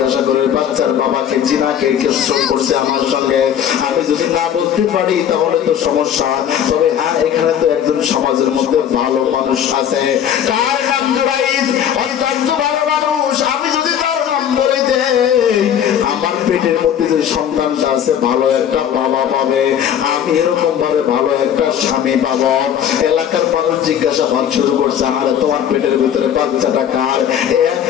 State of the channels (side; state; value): right; quieter; 9.4 dB